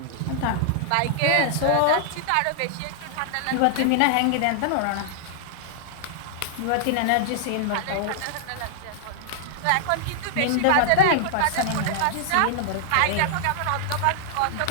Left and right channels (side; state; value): both; different; correlation -0.01